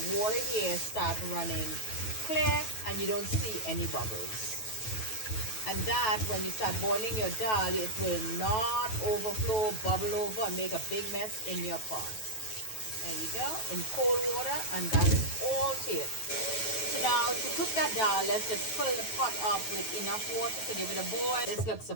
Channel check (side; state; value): right; late; 9.2 ms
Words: water here start running clear and you don't see any bubbles. And that, when you start boiling your dal, it will not overflow, bubble over, and make a big mess in your pot. There you go, in cold water, and that's all to it. So now, to cook that dal, let's just fill the pot up with enough water to give it a boil. This looks